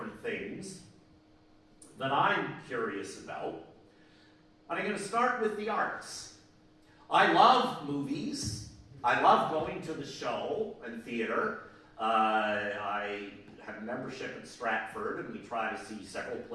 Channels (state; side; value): identical; both; correlation 1.00